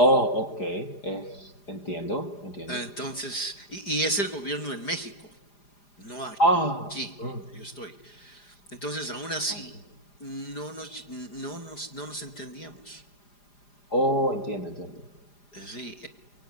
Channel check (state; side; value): late; right; 4.9 ms